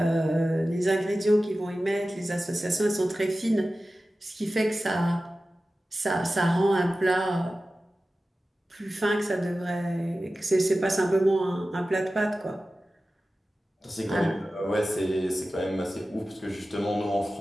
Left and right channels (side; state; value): both; normal; correlation 0.95